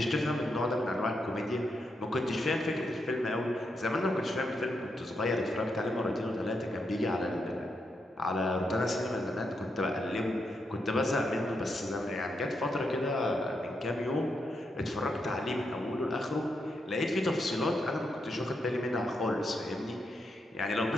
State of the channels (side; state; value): both; normal; correlation 0.82